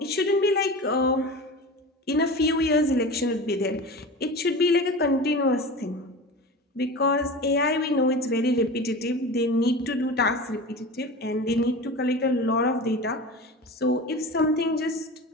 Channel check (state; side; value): normal; both; correlation 0.32